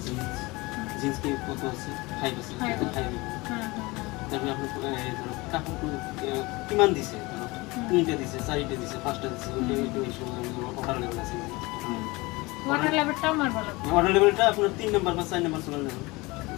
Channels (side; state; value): right; quieter; 23.1 dB